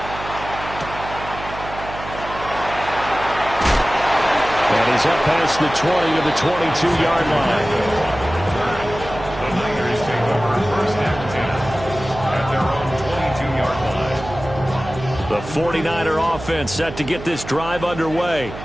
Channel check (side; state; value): right; noise; hum, 11 dB below the sound